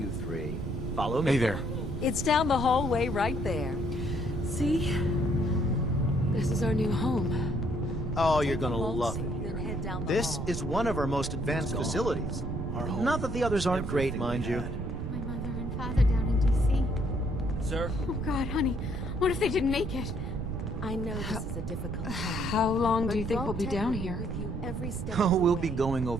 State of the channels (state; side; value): noise; right; rumble, 4 dB below the sound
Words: three. Follow me. Hey there. It's down the hallway right there. See? This is our new home. Oh, you're Take the gonna vault love suit, it. then head down the This hall. is one of our most advanced facilities. Not that the others aren't great, mind you. My mother and father down in D.C. Sir? Oh, God, honey. What if they didn't make it? I know this is a difficult time. How long do you but think we'll be Vault Tech down will be here? with you every step Oh, of the we'll be way. going